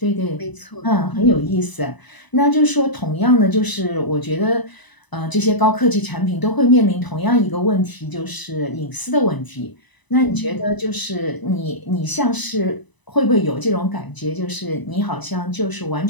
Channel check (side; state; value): right; late; 1.0 ms